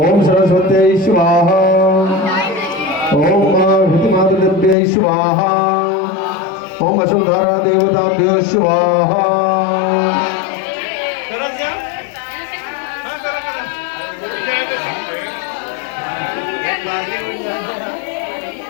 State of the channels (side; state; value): right; drops out; at 4.8 s